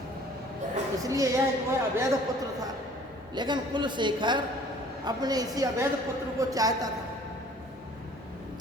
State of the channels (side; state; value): both; normal; correlation 0.52